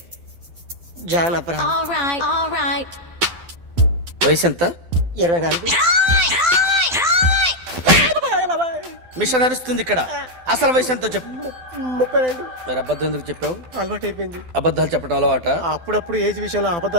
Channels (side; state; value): left; late; 12 ms